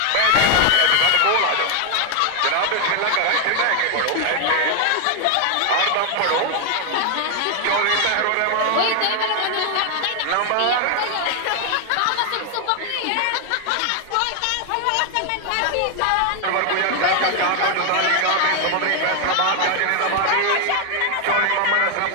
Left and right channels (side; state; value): both; different; correlation 0.01